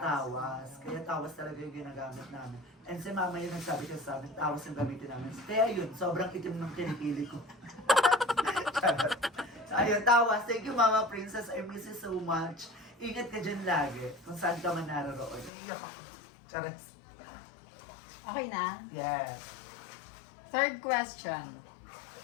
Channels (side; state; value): right; drops out; at 15.5 s